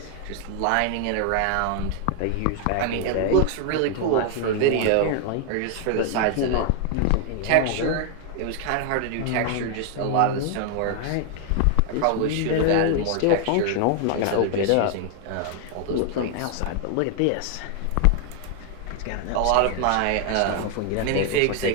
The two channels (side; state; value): both; different; correlation 0.00